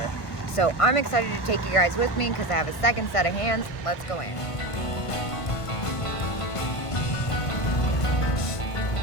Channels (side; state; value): right; late; 1.5 ms